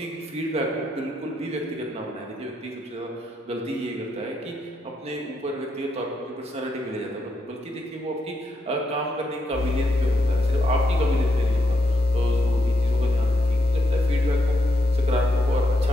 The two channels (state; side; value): normal; both; correlation 0.81